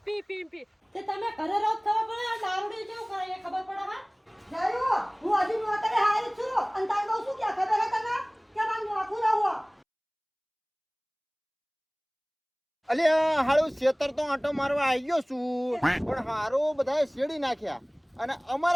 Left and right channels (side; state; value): both; identical; correlation 1.00